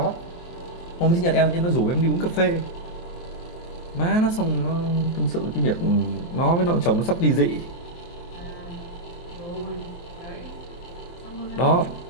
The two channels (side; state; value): right; late; 23 ms